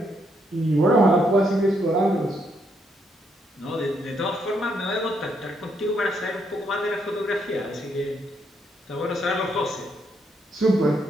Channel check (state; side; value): normal; both; correlation 0.75